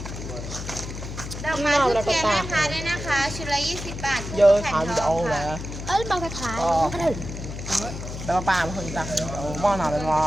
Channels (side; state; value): left; noise; hum, 8 dB below the sound